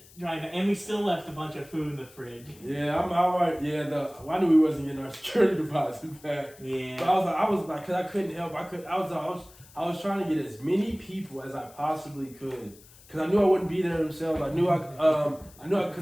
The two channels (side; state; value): left; noise; hiss, 24 dB below the sound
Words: drive back. And we still left a bunch of food in the fridge. Yeah, I'm alright. Yeah, I knew we wasn't getting our security deposit back. Yeah. But I was like, because I couldn't help. I was trying to get as many people as I possibly could. Because I knew I wouldn't be there themselves. I knew